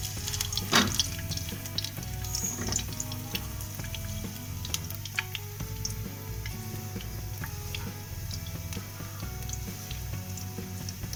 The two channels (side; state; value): both; identical; correlation 1.00